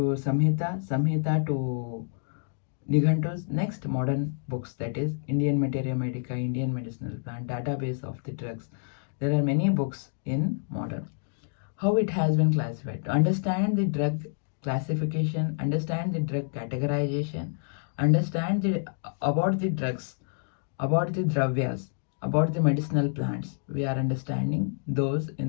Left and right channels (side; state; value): right; silent; digital silence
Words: Samhita, Samhita to Nighantus, next modern books, that is Indian Materia Medica, Indian Medicinal Plant, database of the drugs. There are many books in modern. How it has been classified. To understand the drug classification, understand the drug categorization, understand about the drugs, about the dravyas, about the medicinal plants. We are understanding those